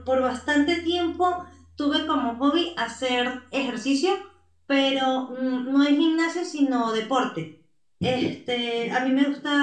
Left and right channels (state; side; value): identical; both; correlation 1.00